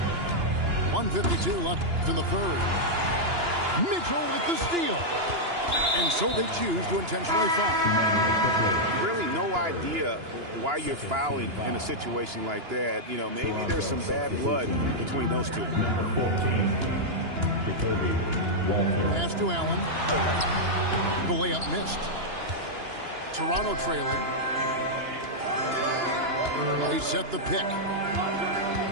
1:52 left in the third. Mitchell with the steal. And so they choose to intentionally foul. Really no idea why you're fouling in a situation like that. You know, maybe there's some bad blood between those two. Pass to Allen. The layup missed. Toronto trailing. They set the pick.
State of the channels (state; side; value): late; left; 2.9 ms